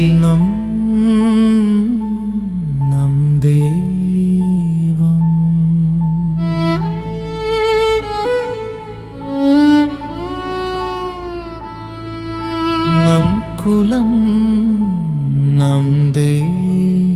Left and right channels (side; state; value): both; identical; correlation 1.00